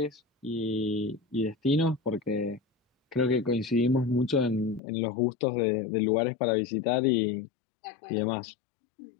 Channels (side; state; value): right; drops out; at 4.8 s